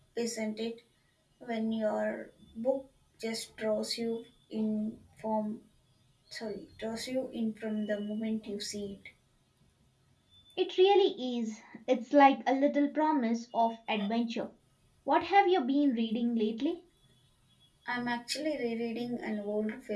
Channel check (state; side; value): identical; both; correlation 1.00